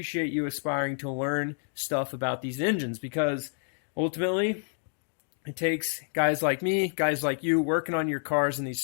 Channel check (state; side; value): silent; right; digital silence